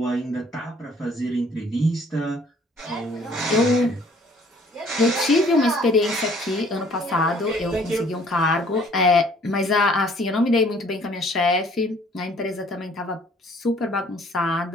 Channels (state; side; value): normal; both; correlation 0.57